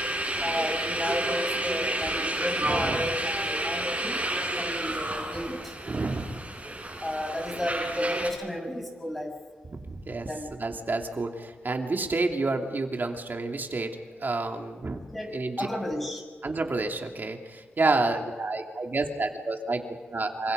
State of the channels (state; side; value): normal; both; correlation 0.77